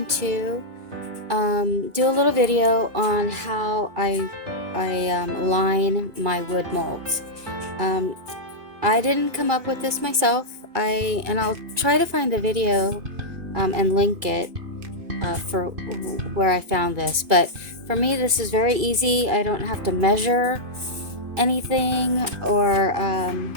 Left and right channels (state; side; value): late; left; 2.5 ms